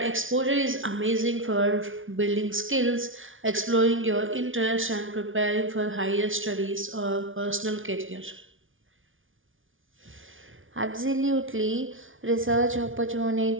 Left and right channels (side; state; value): left; late; 0.57 ms